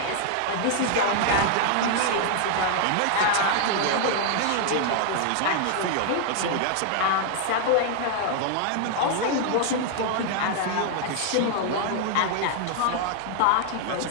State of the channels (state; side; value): different; both; correlation 0.00